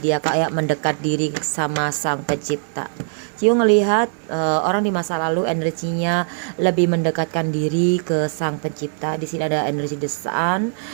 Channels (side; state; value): left; silent; digital silence